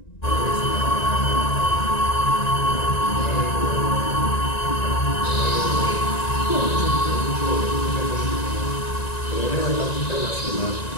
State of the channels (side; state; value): right; late; 1.9 ms